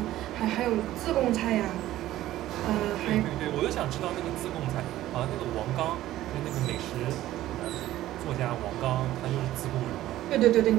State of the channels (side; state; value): left; quieter; 14.5 dB